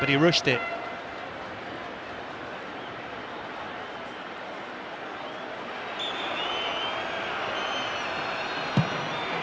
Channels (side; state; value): both; identical; correlation 1.00